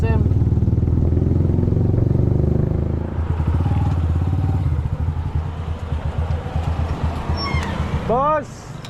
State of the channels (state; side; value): identical; both; correlation 1.00